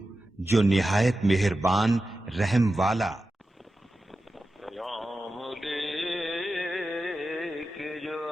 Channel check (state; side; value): normal; both; correlation 0.92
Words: جو نہایت مہربان رحم والا۔ پیام لے کے جو